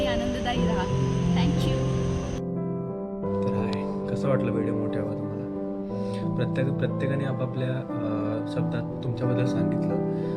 आनंददायी राहा. थँक्यू. तर हाय, कसं वाटलं व्हिडिओ मोठ्या हवा तुम्हाला? प्रत्येकाने आपापल्या शब्दात तुमच्याबद्दल सांगितलं,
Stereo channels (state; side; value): identical; both; correlation 1.00